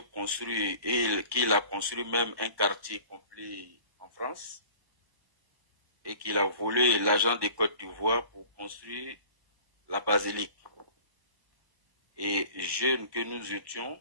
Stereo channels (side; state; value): left; late; 1.1 ms